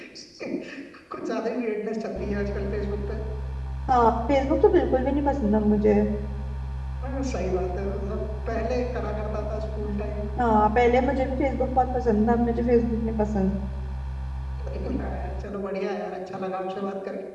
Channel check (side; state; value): both; identical; correlation 1.00